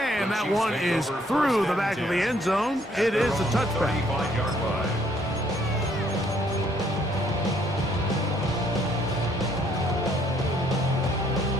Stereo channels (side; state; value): both; normal; correlation 0.66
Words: that one is through the back of the end zone. It is a touchback. 35-yard line.